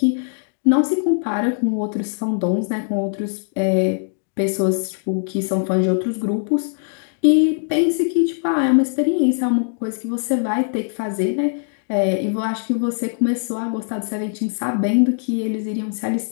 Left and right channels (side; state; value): right; silent; digital silence